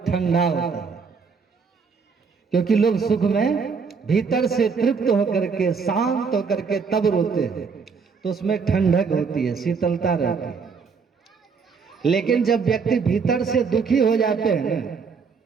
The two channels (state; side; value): quieter; left; 5.4 dB